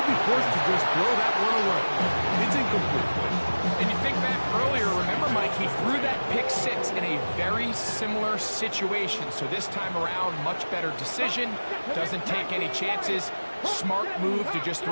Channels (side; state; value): both; inverted; correlation -1.00